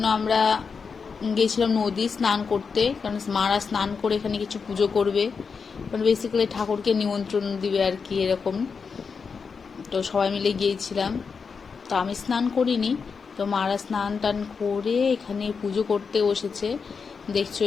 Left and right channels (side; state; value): right; quieter; 5.5 dB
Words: আমরা গিয়েছিলাম নদী স্নান করতে, কারণ মারা স্নান করে এখানে কিছু পুজো করবে, মানে বেসিক্যালি ঠাকুরকে নিমন্ত্রণ দিবে আর কি, এরকম। তো সবাই মিলে গিয়েছিলাম। তো আমি স্নান করিনি, তো মারা স্নান টান করে এখানে পুজো করতে বসেছে। দেখছো